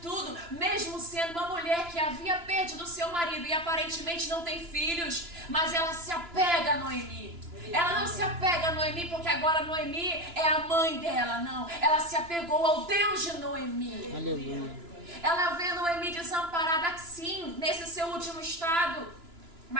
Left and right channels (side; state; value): left; late; 2.9 ms